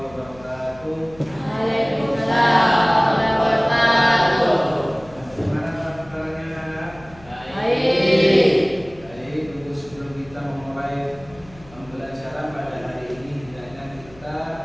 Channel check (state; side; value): noise; left; hum, 23 dB below the sound